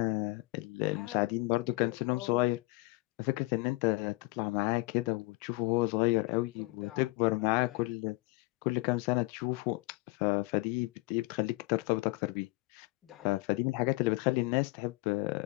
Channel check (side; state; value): right; quieter; 22.7 dB